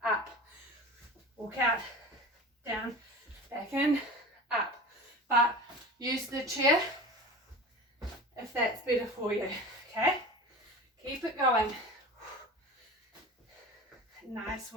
up. Walk out, down, back in, up. But use the chair if that's better for you, okay? Keep it going. Nice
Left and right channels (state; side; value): normal; both; correlation 0.33